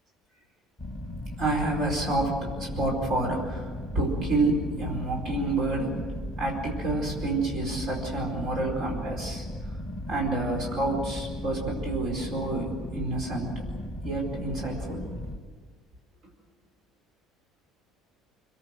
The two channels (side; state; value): both; normal; correlation 0.47